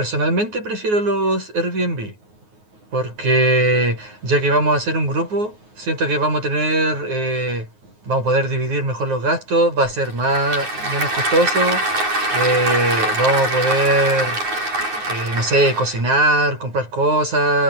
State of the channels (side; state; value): left; late; 9.5 ms